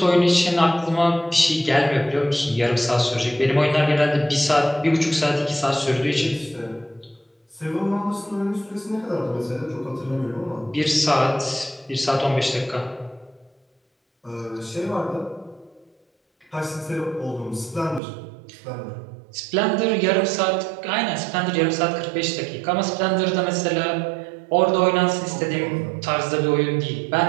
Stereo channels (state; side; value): drops out; left; at 18.0 s